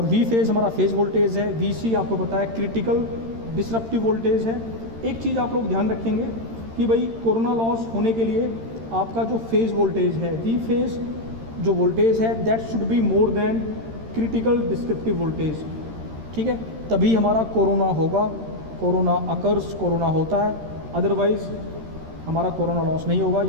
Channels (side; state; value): left; late; 13 ms